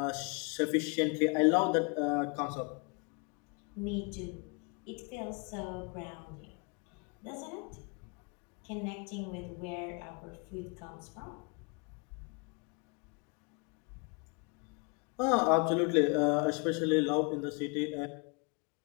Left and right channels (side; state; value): right; quieter; 33.7 dB